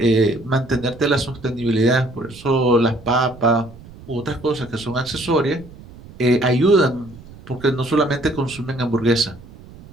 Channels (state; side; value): noise; right; rumble, 19 dB below the sound